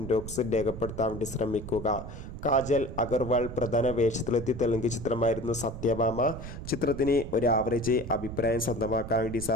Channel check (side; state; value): right; noise; rumble, 10 dB below the sound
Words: ബോക്സിൽ രേഖപ്പെടുത്താൻ വേണ്ടി ശ്രമിക്കുക. കാജൽ അഗർവാൾ പ്രധാന വേഷത്തിലെത്തിയ തെലുങ്ക് ചിത്രമായിരുന്നു സത്യഭാമ. ചിത്രത്തിന് ഒരു ആവറേജ് അഭിപ്രായം സ്വന്തമാക്കാൻ വേണ്ടി